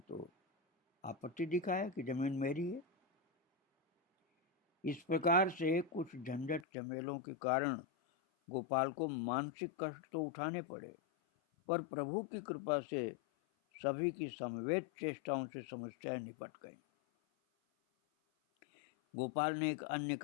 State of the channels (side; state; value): right; drops out; at 6.7 s